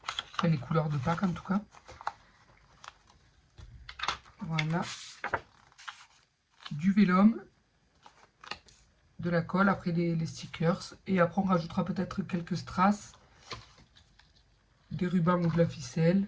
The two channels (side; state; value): both; identical; correlation 1.00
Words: Enfin, les couleurs de Pâques en tout cas. Voilà. Du vélum, de la colle, après les stickers. Et après, on rajoutera peut-être quelques strass, des rubans ou de la ficelle.